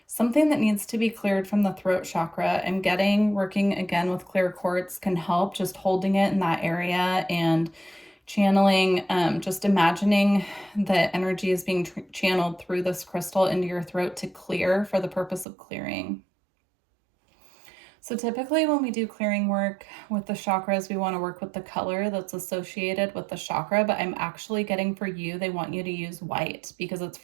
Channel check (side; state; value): left; drops out; at 15.5 s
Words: something that needs to be cleared from the throat chakra. I'm getting, working again with clear quartz can help, just holding it in that area and channeling, just imagining the energy is being channeled through this crystal into your throat to clear for the purpose of clearing. So typically when we do clearing work with the chakras, we want to work with the color that's associated with the chakra, but I'm actually getting for you, they want you to use white because it's